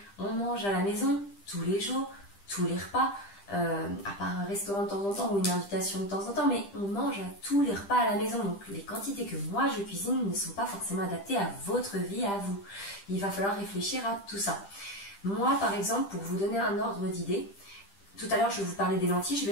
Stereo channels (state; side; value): late; right; 10 ms